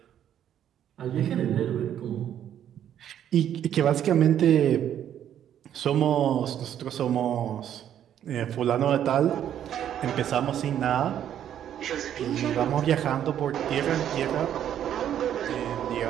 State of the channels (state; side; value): quieter; left; 10.2 dB